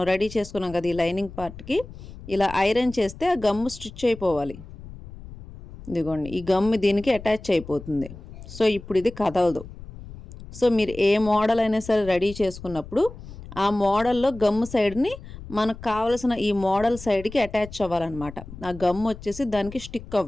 రెడీ చేసుకున్నాం కదా ఈ లైనింగ్ పార్ట్కి ఇలా ఐరన్ చేస్తే ఆ గమ్ స్టిచ్ అయిపోవాలి. ఇదిగోండి ఈ గమ్ దీనికి అటాచ్ అయిపోతుంది. సో ఇప్పుడు ఇది కదలదు. సో మీరు ఏ మోడల్ అయినా సరే రెడీ చేసుకున్నప్పుడు ఆ మోడల్లో గమ్ సైడ్ని మనకు కావలసిన ఈ మోడల్ సైడ్కి అటాచ్ అవ్వాలన్నమాట. ఆ గమ్ వచ్చేసి దానికి స్టిక్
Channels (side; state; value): left; noise; rumble, 15 dB below the sound